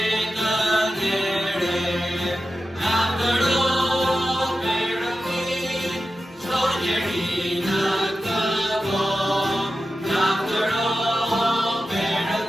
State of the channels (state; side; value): normal; both; correlation 0.92